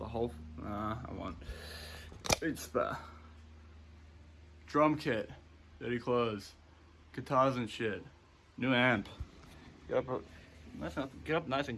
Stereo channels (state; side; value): identical; both; correlation 1.00